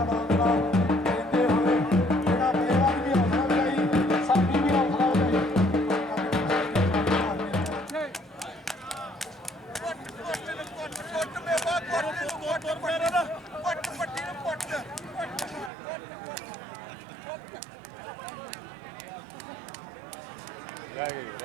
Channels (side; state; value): left; drops out; at 15.7 s